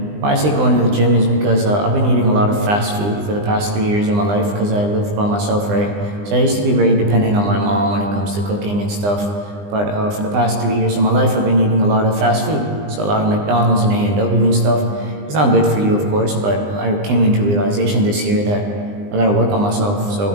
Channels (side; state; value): left; late; 20 ms